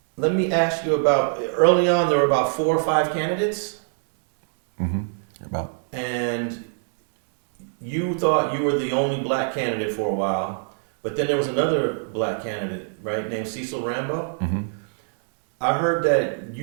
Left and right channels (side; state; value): left; silent; 63 dB below the other